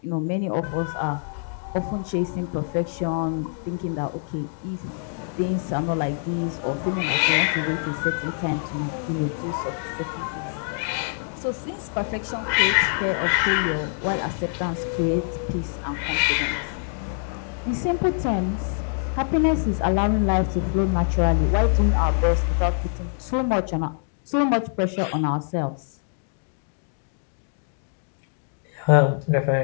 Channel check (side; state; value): right; silent; digital silence